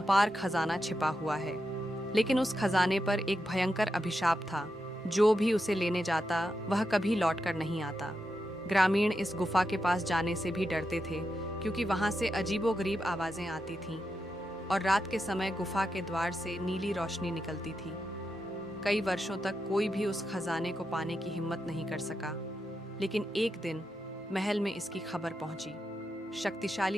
खजाना छिपा हुआ है। लेकिन उस खजाने पर एक भयंकर अभिशाप था। जो भी उसे लेने जाता वह कभी लौटकर नहीं आता। ग्रामीण इस गुफा के पास जाने से भी डरते थे, क्योंकि वहां से अजीबोगरीब आवाजें आती थीं और रात के समय गुफा के द्वार से नीली रोशनी निकलती थी। कई वर्षों तक कोई भी उस खजाने को पाने की हिम्मत नहीं कर सका। लेकिन एक दिन महल में इसकी खबर पहुंची।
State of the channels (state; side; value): normal; both; correlation 0.86